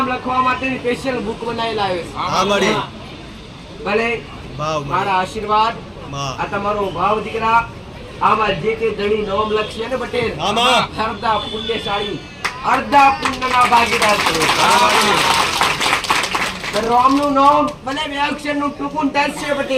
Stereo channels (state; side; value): identical; both; correlation 1.00